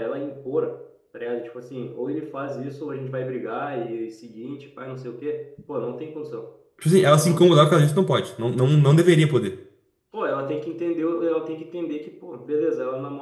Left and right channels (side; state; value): both; identical; correlation 1.00